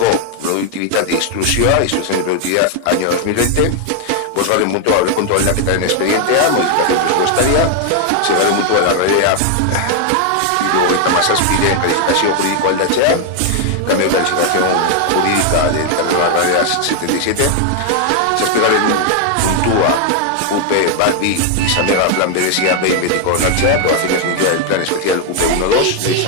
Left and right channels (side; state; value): both; different; correlation 0.01